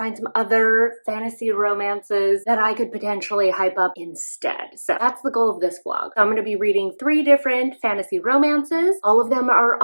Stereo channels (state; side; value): inverted; both; correlation -1.00